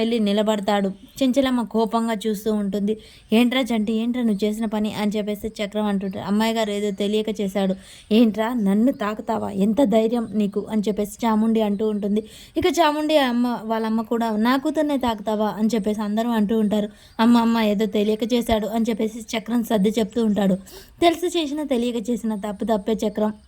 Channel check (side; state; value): both; identical; correlation 1.00